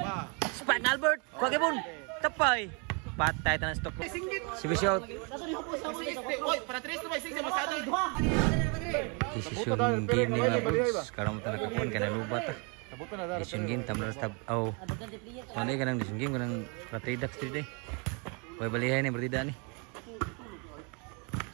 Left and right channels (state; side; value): quieter; left; 34.5 dB